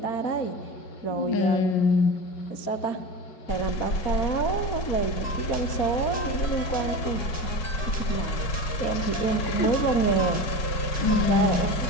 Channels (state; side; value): late; right; 5.4 ms